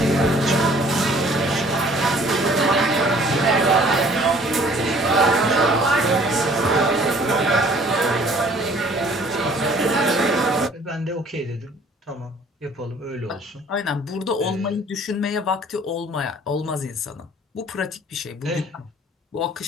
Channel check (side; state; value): both; normal; correlation 0.55